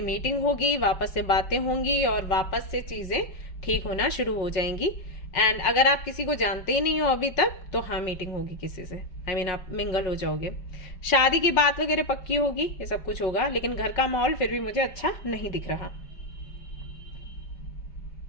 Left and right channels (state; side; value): late; right; 5.5 ms